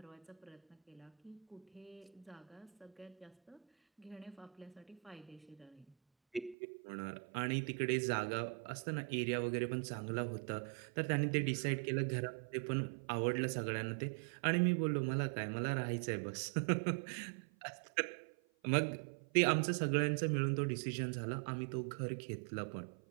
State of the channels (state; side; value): drops out; left; at 6.6 s